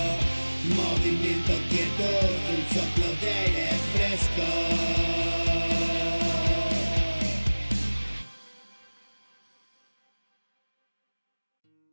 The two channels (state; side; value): inverted; both; correlation -1.00